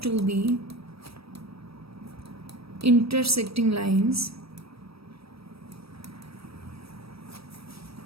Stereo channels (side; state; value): left; late; 0.77 ms